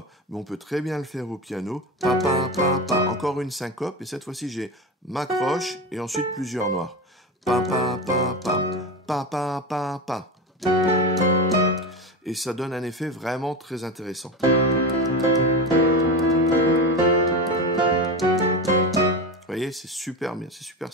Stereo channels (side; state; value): both; normal; correlation 0.21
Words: mais on peut très bien le faire au piano. Pa, pa, pa, pa. Encore une syncope, et cette fois-ci, j'ai ma croche et ensuite plusieurs noirs. Pa, pa, pa, pa. Pa, pa, pa, pa. Et ça donne un effet vraiment très intéressant. Vous voyez, c'est super bien, c'est super